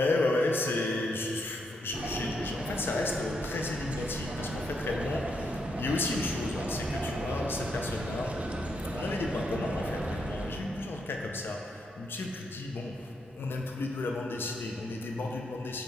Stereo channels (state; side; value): normal; both; correlation 0.78